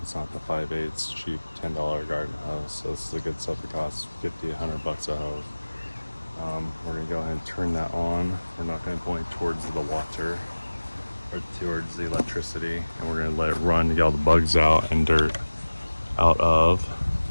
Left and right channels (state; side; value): inverted; both; correlation -1.00